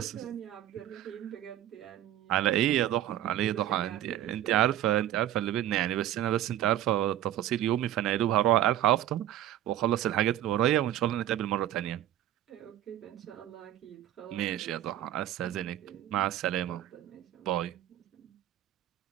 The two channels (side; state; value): left; quieter; 12.6 dB